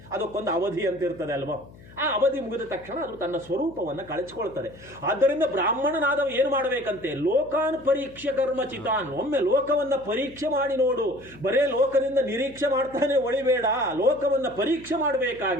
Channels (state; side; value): noise; left; hum, 21 dB below the sound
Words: ಅದಕ್ಕೊಂದು ಅವಧಿ ಅಂತ ಇರ್ತದೆ ಅಲ್ವಾ. ಆ ಅವಧಿ ಮುಗಿದ ತಕ್ಷಣ ಅದು ತನ್ನ ಸ್ವರೂಪವನ್ನು ಕಳಚಿಕೊಳ್ತದೆ. ಆದ್ದರಿಂದ ಬ್ರಾಹ್ಮಣನಾದವ ಏನು ಮಾಡಬೇಕಂತೆ? ಲೋಕಾನ್ ಪರೀಕ್ಷೆ ಕರ್ಮ ಚಿತಾನ್. ಒಮ್ಮೆ ಲೋಕವನ್ನು ಪರೀಕ್ಷೆ ಮಾಡಿ ನೋಡು. ಬರೇ ಲೋಕದಿಂದ ನಿರೀಕ್ಷೆ ಮಾಡ್ತಾನೆ ಒಳಿಬೇಡ, ಲೋಕವನ್ನು ಪರೀಕ್ಷೆ